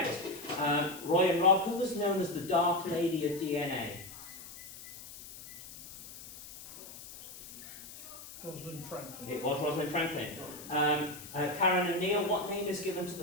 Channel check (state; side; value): noise; left; hiss, 15 dB below the sound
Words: Roy and Rob, who was known as the Dark Lady of DNA? Rosalind Franklin. It was Rosalind Franklin. Karen and Neil, what name is given to